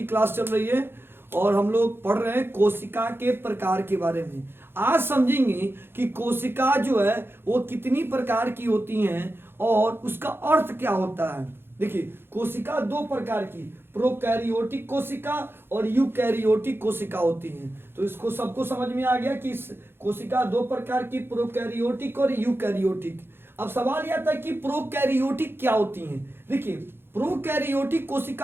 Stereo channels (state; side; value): late; left; 0.11 ms